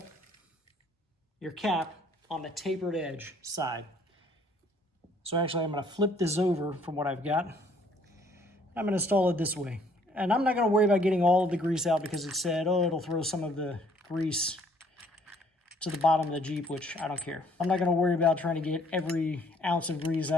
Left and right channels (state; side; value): normal; both; correlation 0.62